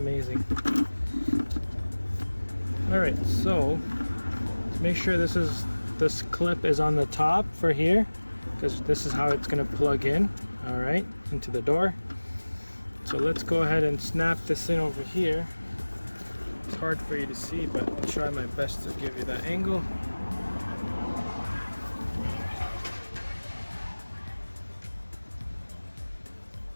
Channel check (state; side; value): inverted; both; correlation -1.00